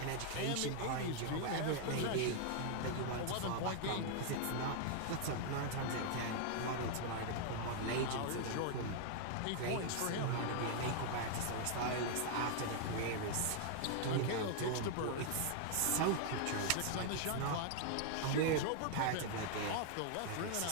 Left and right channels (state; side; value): different; both; correlation 0.00